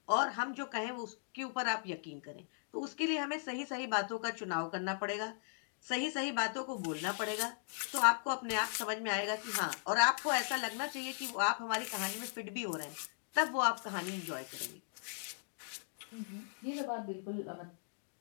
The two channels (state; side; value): silent; right; digital silence